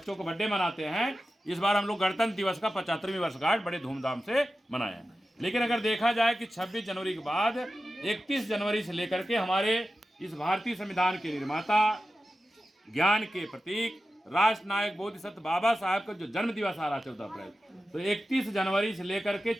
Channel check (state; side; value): normal; both; correlation 0.93